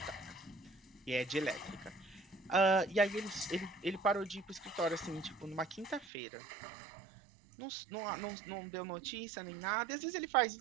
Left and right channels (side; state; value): left; drops out; at 6.1 s